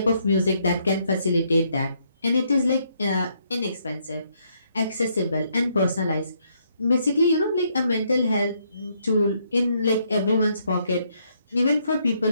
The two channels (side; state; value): both; inverted; correlation -0.73